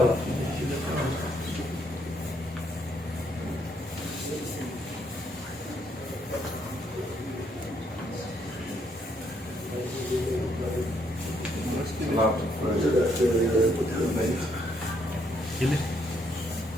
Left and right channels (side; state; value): both; normal; correlation 0.72